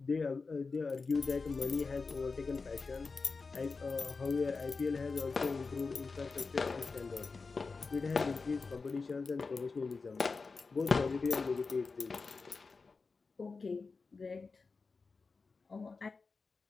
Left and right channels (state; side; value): quieter; right; 4.4 dB